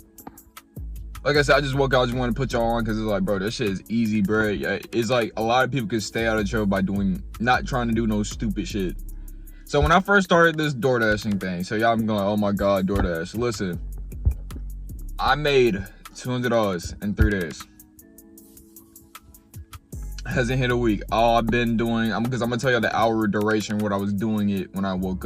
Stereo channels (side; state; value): both; identical; correlation 1.00